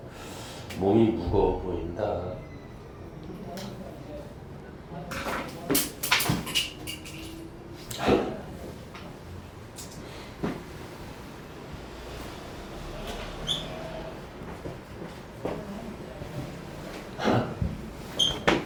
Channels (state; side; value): identical; both; correlation 1.00